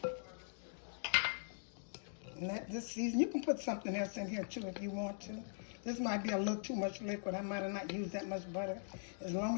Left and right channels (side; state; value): right; silent; digital silence